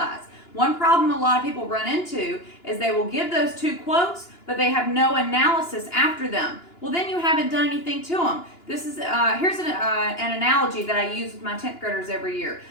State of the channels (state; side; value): late; right; 2.9 ms